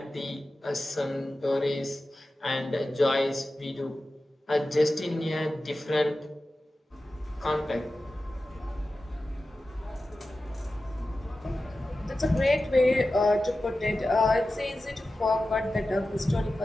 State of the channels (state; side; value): normal; both; correlation 0.94